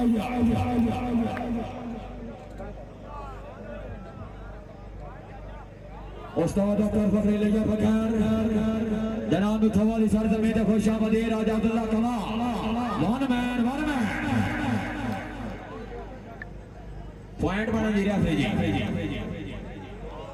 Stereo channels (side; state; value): both; identical; correlation 1.00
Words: उस्ताद doctor फखरी लिया बकर जनाब थवाली सरजमीन खुशामदी राजा Abdullah comma one man point बना जी रहा जी